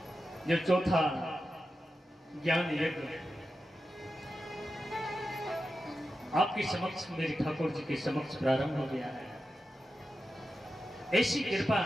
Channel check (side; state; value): both; normal; correlation 0.91